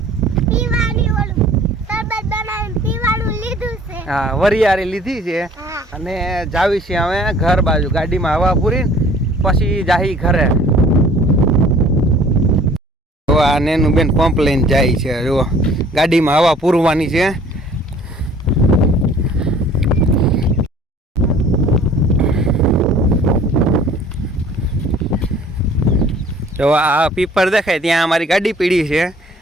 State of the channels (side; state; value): both; normal; correlation 0.52